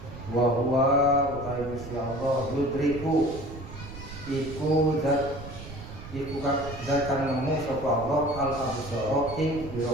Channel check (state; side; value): noise; right; rumble, 12 dB below the sound